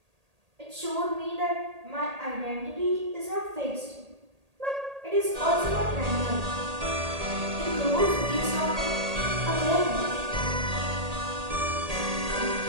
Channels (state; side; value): late; left; 1.8 ms